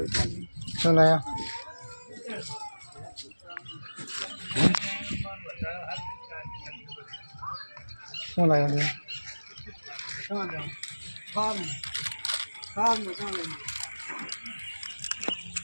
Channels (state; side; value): inverted; both; correlation -1.00